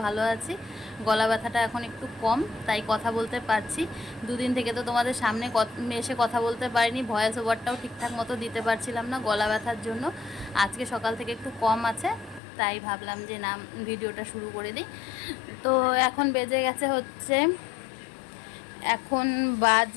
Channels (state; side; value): drops out; right; at 12.4 s